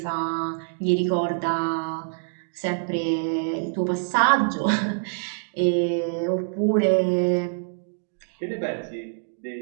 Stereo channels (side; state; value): left; silent; digital silence